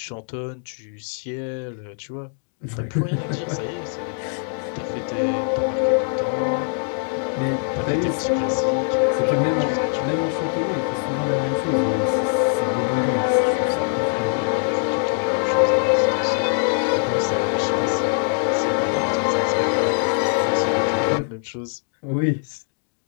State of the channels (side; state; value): right; silent; 61 dB below the other